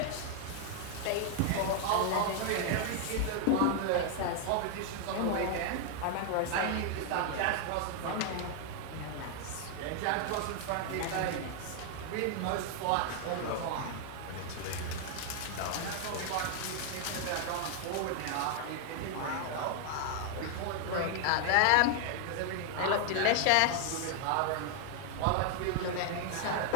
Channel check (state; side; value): different; both; correlation 0.00